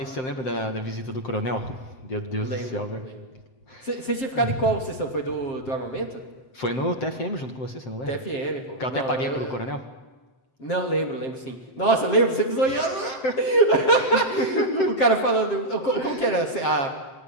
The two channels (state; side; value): late; right; 7.5 ms